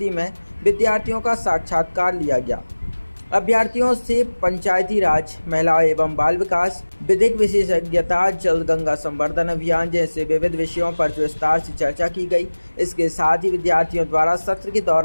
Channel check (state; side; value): inverted; both; correlation -1.00